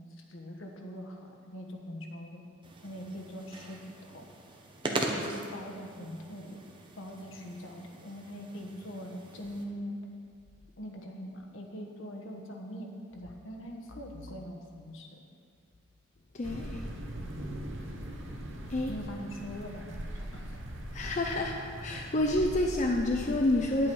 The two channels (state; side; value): normal; both; correlation 0.54